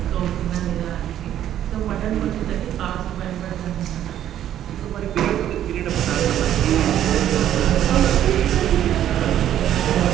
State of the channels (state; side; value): quieter; left; 11.3 dB